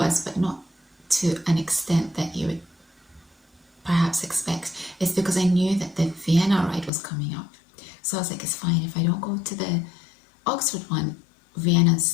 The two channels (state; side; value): drops out; right; at 6.9 s